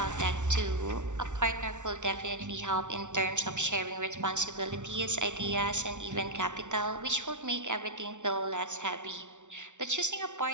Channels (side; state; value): left; late; 0.85 ms